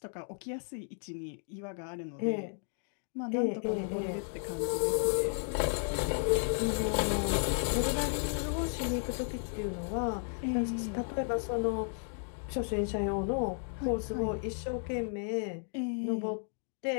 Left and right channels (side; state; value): right; silent; 55 dB below the other